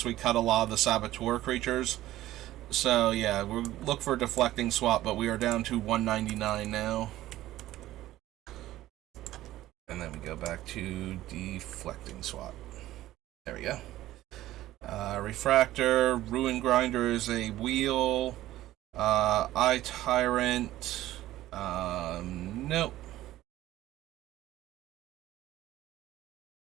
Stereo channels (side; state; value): left; quieter; 15.0 dB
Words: we cut a lot of the Saboteur creatures. So yeah, we'll look for Deflecting Swat, but we are down to 199 now. And then we go back to Deflecting Swat. There we go. Refractor, Ruin Grinder is a wheel. Eye Tyrant. Nope.